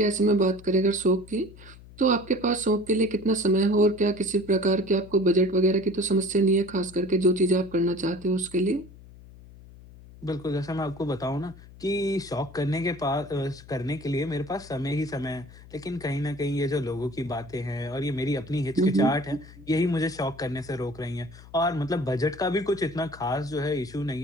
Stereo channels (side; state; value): left; noise; hum, 20 dB below the sound